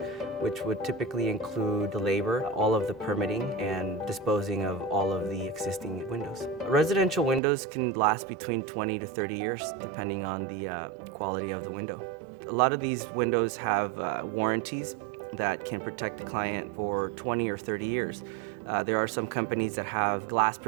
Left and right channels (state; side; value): drops out; left; at 7.4 s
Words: which would typically include the labor, all of the permitting, and disposing of all of the existing windows. Residential windows can last between 20 to 30 years, depending on the quality of the window. A lot of these windows have warranties that can protect the client for 20 or 30 years. There are some companies that have glass